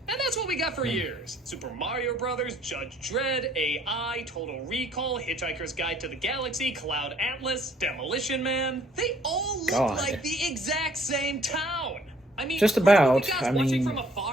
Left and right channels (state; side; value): normal; both; correlation 0.61